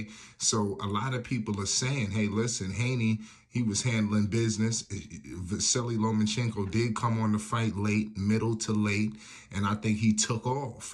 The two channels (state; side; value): identical; both; correlation 1.00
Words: So a lot of people are saying, hey, listen, Haney, he was handling business. Vasiliy Lomachenko did come on the fight late, middle to late, and I think he took off,